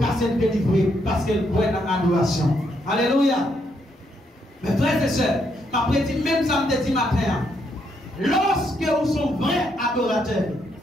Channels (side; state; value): both; normal; correlation 0.76